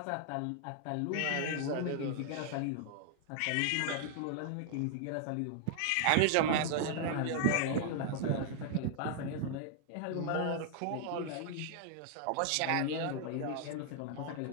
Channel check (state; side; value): different; both; correlation 0.00